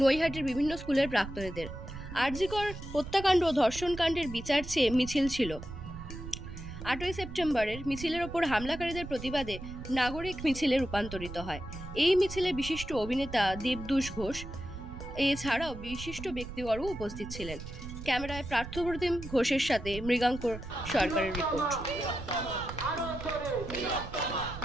নৈহাটির বিভিন্ন স্কুলের প্রাক্তনীদের। আরজিকর হত্যাকাণ্ড ও ধর্ষণকাণ্ডের বিচার চেয়ে মিছিল ছিল। 8 সেপ্টেম্বরের মিছিলের ওপর হামলাকারীদের প্রতিবাদে নাগরিক মিছিলে রূপান্তরিত হয়। এই মিছিলে বিশিষ্ট অভিনেতা দেবদূষ ঘোষ এছাড়াও বিশিষ্ট ব্যক্তিবর্গ উপস্থিত ছিলেন। ক্যামেরায় পার্থপ্রতিম ঘোষের সাথে মৃগাঙ্কর সরকারের রিপোর্ট।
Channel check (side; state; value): right; noise; rumble, 11 dB below the sound